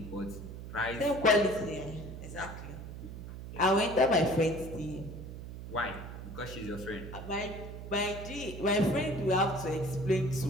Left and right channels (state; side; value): noise; right; hum, 10 dB below the sound